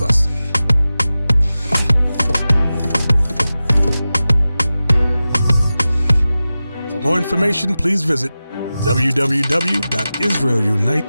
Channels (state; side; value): inverted; both; correlation -0.95